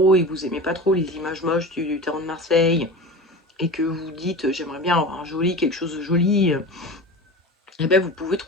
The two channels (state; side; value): normal; both; correlation 0.31